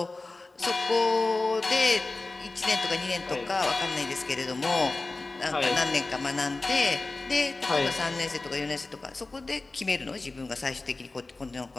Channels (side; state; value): right; quieter; 3.3 dB